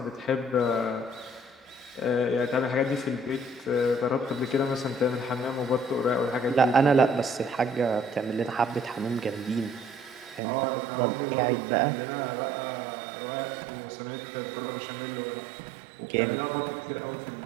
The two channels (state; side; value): drops out; left; at 10.4 s